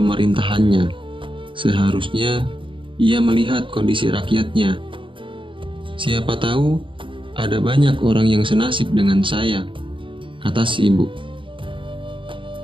Seharusnya ia melihat kondisi rakyatnya. Siapa tahu ada banyak orang yang senasib dengan saya," kata si ibu.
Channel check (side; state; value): left; late; 0.25 ms